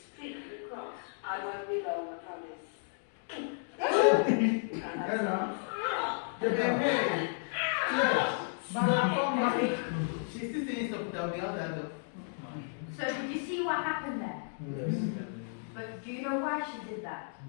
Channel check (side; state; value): right; silent; digital silence